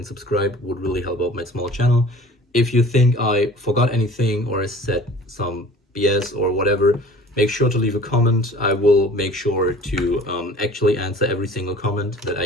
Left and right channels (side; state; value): both; normal; correlation 0.46